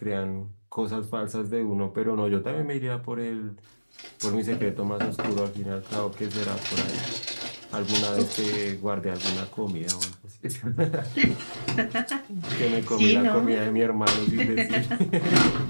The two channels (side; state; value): both; inverted; correlation -1.00